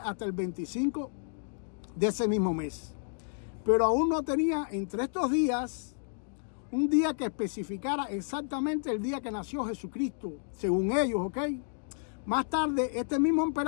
hasta el 25 de ese mismo mes. Pero aún no tenía entre estos días un día que especificara exactamente el día que nació Jesucristo, según ellos, ¿ok? Más tarde, este mismo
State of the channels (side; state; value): right; silent; digital silence